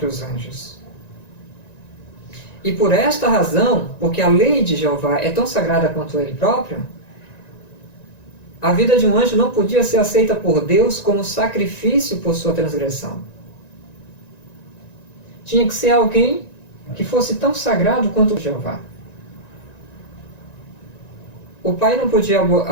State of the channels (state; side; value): late; right; 1.9 ms